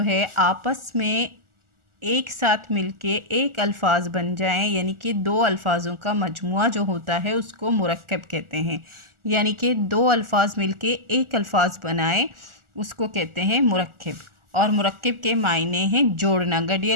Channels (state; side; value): late; left; 1.4 ms